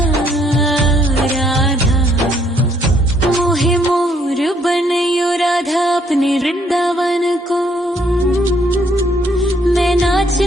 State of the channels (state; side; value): normal; both; correlation 0.67